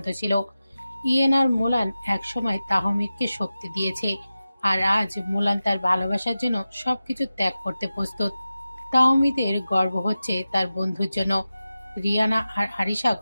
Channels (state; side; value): inverted; both; correlation -0.94